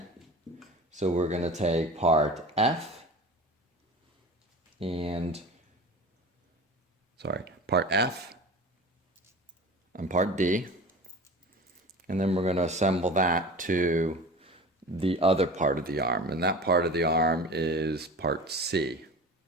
So we're going to take part F and, part F and part D. And then we're going to assemble that to the other part of the arm. And that part of the arm is part C.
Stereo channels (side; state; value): both; normal; correlation 0.36